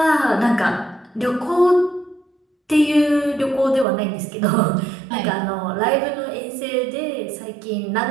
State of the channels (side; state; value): left; drops out; at 3.9 s